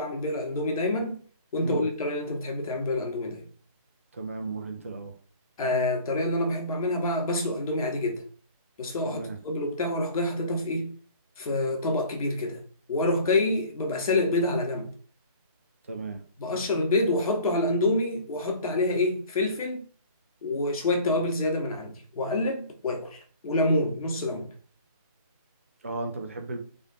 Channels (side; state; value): both; inverted; correlation -0.47